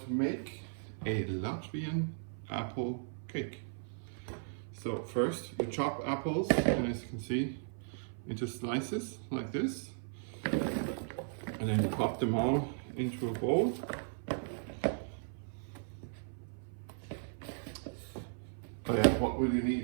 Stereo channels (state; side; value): silent; left; 54 dB below the other